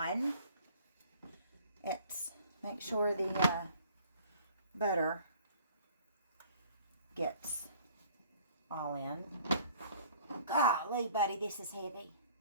It's make sure the butter gets all in. Golly, buddy, this is heavy.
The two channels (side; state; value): both; inverted; correlation -0.54